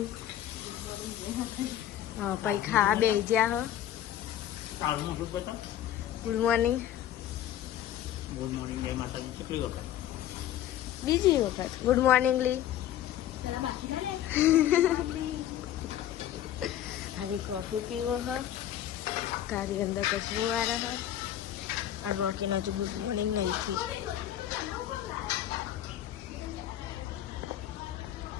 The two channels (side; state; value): right; quieter; 11.7 dB